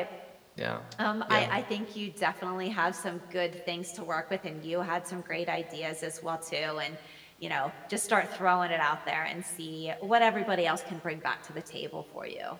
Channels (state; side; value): identical; both; correlation 1.00